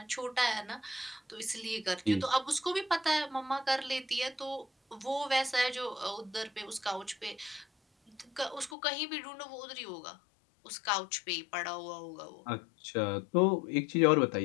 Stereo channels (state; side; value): drops out; right; at 8.8 s